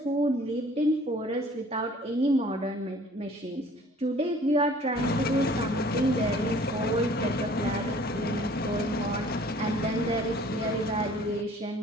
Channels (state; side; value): normal; both; correlation 0.52